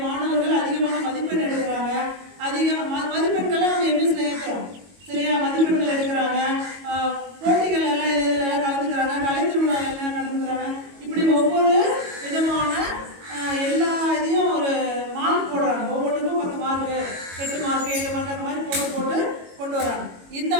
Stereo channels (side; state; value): left; late; 22 ms